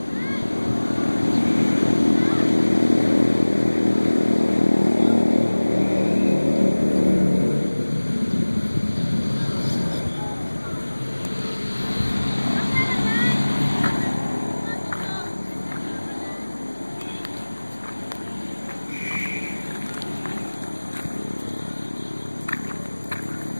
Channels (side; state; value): both; inverted; correlation -1.00